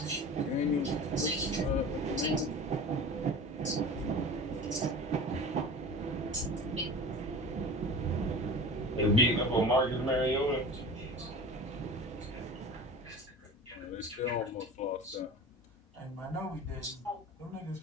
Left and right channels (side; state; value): both; normal; correlation 0.36